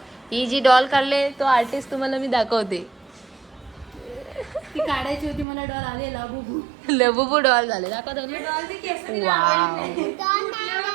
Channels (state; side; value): drops out; left; at 5.5 s